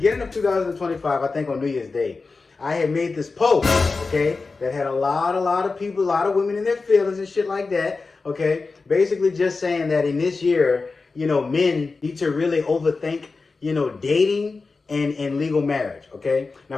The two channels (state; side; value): quieter; right; 4.1 dB